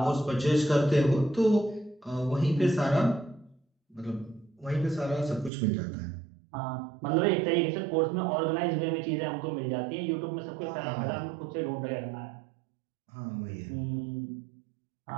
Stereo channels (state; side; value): drops out; left; at 5.5 s